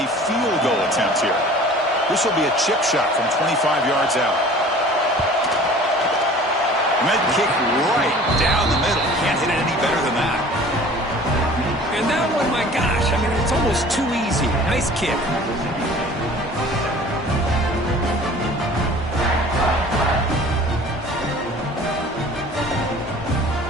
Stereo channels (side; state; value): both; normal; correlation 0.46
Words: field goal attempt here. This will be a chip shot from 25 yards out. And that kick right down the middle. Can't hit it any better than that. And that one, my gosh, I mean, it's almost too easy. Nice kick.